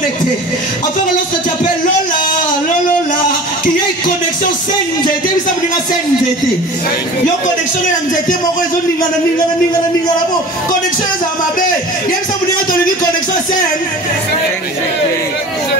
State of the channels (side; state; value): both; normal; correlation 0.39